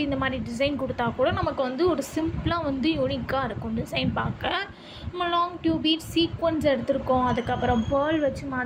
இந்த மாதிரி டிசைன் கொடுத்தா கூட நமக்கு வந்து ஒரு சிம்பிளாக வந்து யூனிக்காக இருக்கும் டிசைன் பார்க்க. நம்ம லாங் டியூப் பீட் சீக்வன்ஸ் எடுத்திருக்கோம், அதுக்கப்புறம் பேர்ல் வச்சு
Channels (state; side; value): identical; both; correlation 1.00